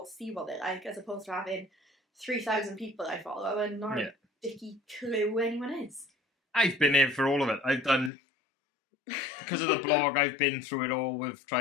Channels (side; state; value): right; drops out; at 8.1 s